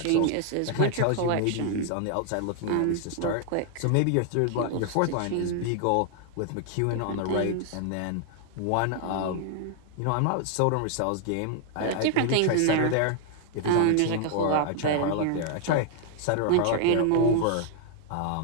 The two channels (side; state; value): both; different; correlation 0.00